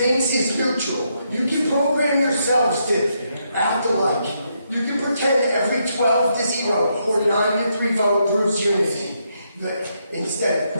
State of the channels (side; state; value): both; inverted; correlation -0.78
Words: is neutral. You can program yourselves to act alike. You can pretend every 12-0 or 9-3 vote proves unity, but instead of